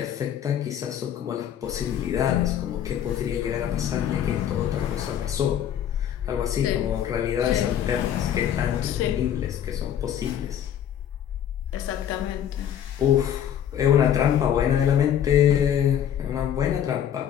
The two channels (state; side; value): quieter; right; 9.8 dB